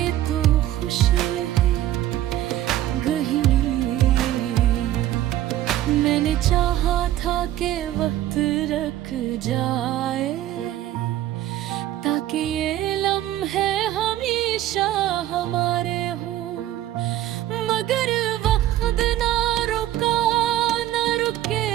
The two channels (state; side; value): quieter; left; 13.4 dB